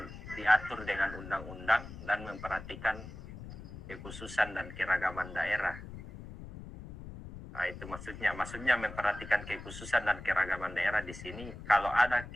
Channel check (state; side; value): noise; left; rumble, 12 dB below the sound